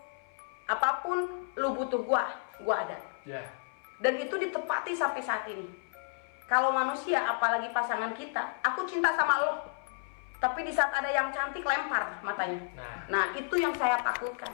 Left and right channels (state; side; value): silent; right; 57 dB below the other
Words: apapun lu butuh gue ada. Dan itu ditepati sampai saat ini. Kalau manusia, apalagi pasangan kita, aku cinta sama lo, tapi di saat ada yang cantik lempar matanya. Nah itu yang saya takutkan.